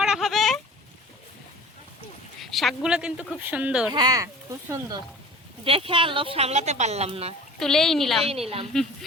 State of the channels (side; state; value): both; normal; correlation 0.42